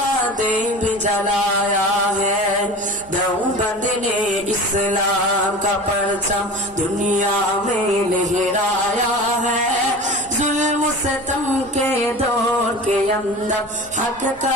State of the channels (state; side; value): noise; right; rumble, 24 dB below the sound